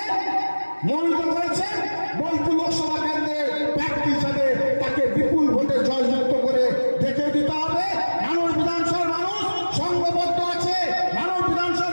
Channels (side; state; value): both; inverted; correlation -1.00